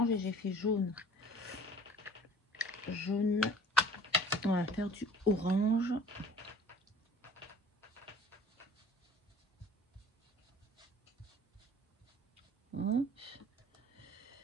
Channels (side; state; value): both; normal; correlation 0.49